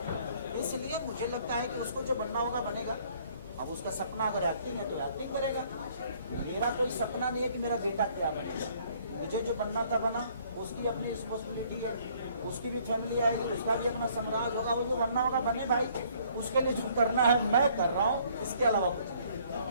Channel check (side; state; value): both; inverted; correlation -0.61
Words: इसलिए मुझे लगता है कि उसको जो बनना होगा बनेगा। अब उसका सपना अगर एक्टिंग है तो एक्टिंग करेगा। मेरा कोई सपना नहीं है कि मेरा बेटा क्या बनेगा, मुझे जो बनना था बना, उसकी अपनी रिस्पॉन्सिबिलिटी है, उसकी भी फैमिली आएगी, उसका भी अपना साम्राज्य होगा, वो जो बनना होगा बने भाई। उसके लिए जो करना है मैं कर रहा हूँ, इसके अलावा कुछ नहीं।